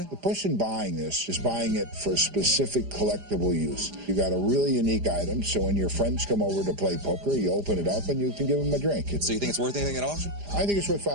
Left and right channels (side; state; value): left; late; 4.9 ms